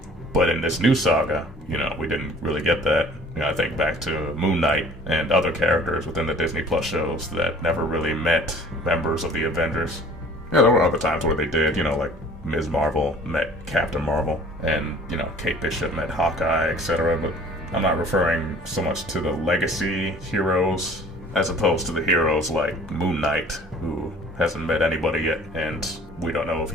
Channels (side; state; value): both; normal; correlation 0.50